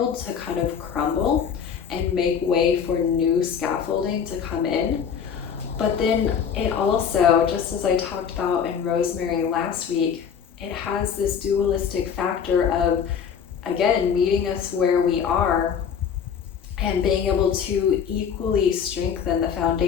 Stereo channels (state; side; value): quieter; right; 7.3 dB